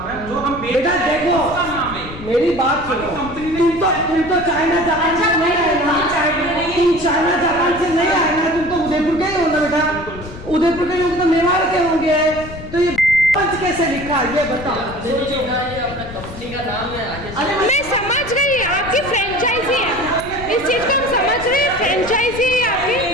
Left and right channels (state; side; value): noise; left; rumble, 13 dB below the sound